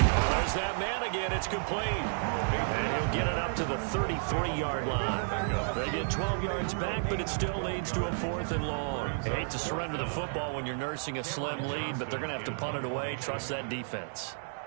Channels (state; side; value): silent; left; 57 dB below the other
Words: there's that man again. It's complete. And he'll get it up to the 33-yard line. They get 12 yards back, but it still leads to a 4th and long. You hate to surrender the football when you're nursing a slim lead, but they're going to have to punt it away. Trust that defense.